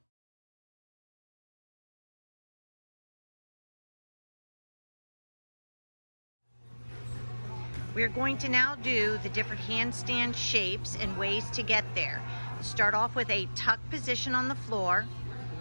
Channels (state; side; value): inverted; both; correlation -1.00